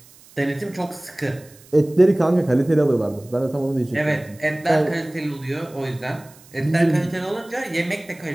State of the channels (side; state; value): right; noise; hiss, 25 dB below the sound